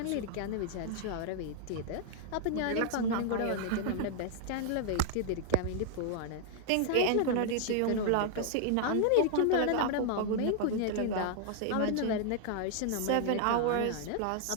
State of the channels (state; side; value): different; both; correlation -0.01